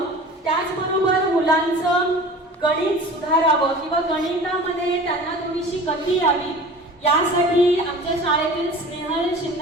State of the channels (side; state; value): both; normal; correlation 0.40